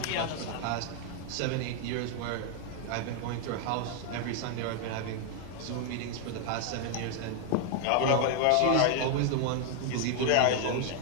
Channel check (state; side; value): different; both; correlation 0.00